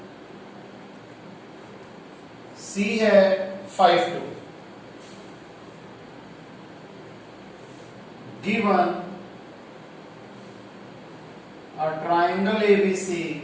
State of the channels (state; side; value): identical; both; correlation 1.00